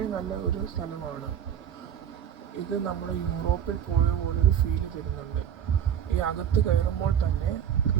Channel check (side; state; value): left; quieter; 9.2 dB